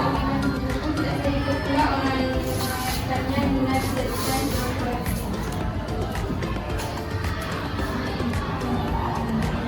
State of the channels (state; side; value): identical; both; correlation 1.00